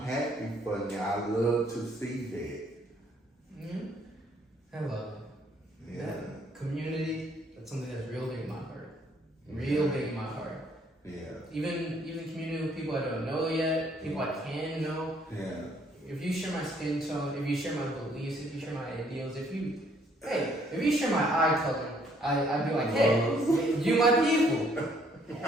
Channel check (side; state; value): both; normal; correlation 0.65